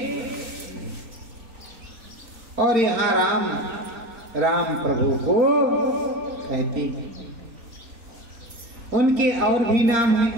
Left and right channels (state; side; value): late; left; 4.3 ms